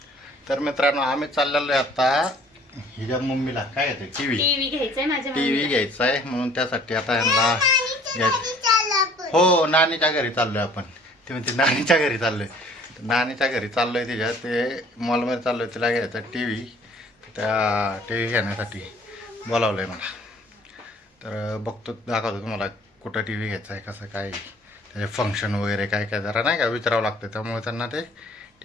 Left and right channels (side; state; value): both; normal; correlation 0.54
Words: तर मित्रांनो, आम्ही चाललेलो आहे आता. हिच्या मम्मीला काय येते? टीव्ही घ्यायचंय माझ्या. टीव्ही घ्यायचा आहे म्हणून त्यासाठी आता ह्यांना घ्यायचं. हो, नानीच्या घरी चाललोय आपण. ते म्हणते नानीच्या घरी चाललोय. नानीच्या घरी चाललोय तिच्या ते मॉलमध्ये चाललोय तिला घ्यायचा टी व्ही. त्या टी व्ही घेण्यासाठी बोलावलं आहे मला. तर बघतो दाखवतो तुम्हाला कुठं टी व्ही घ्यायचा आहे कसं काय त्याचे फंक्शन वगैरे काय काय जरा नाही का विचारावं लागतं त्यामुळे त्यांना ते